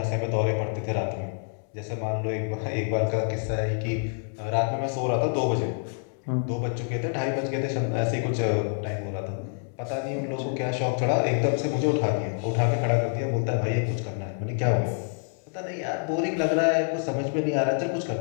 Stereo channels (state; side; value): silent; right; 60 dB below the other